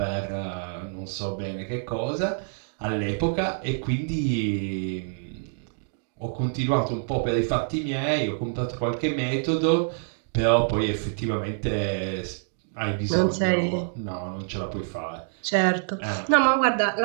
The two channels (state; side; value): silent; left; digital silence